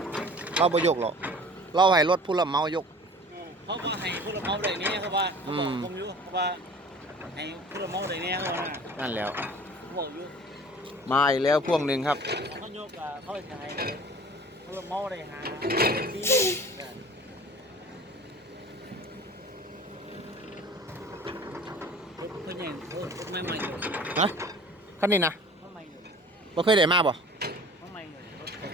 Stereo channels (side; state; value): both; normal; correlation 0.45